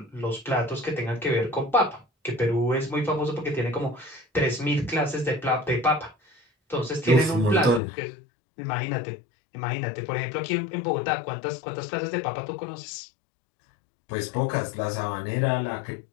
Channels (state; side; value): drops out; right; at 7.8 s